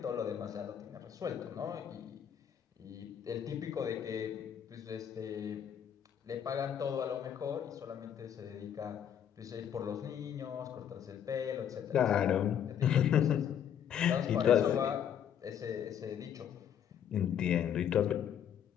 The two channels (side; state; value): right; quieter; 9.1 dB